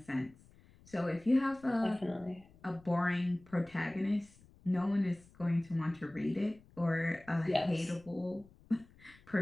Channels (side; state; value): left; noise; rumble, 26 dB below the sound